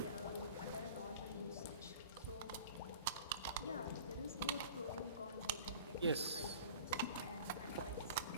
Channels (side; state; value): both; inverted; correlation -0.42